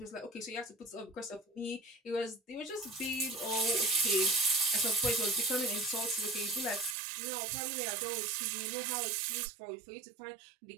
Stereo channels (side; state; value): left; drops out; at 7.0 s